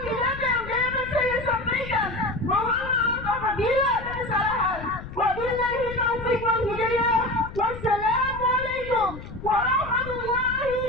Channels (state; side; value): noise; left; rumble, 12 dB below the sound